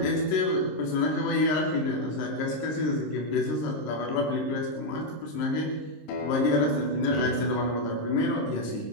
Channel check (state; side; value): late; right; 26 ms